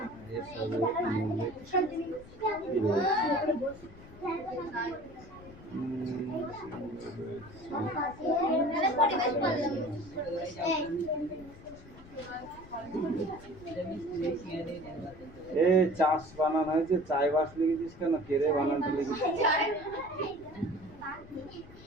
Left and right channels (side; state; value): left; noise; rumble, 19 dB below the sound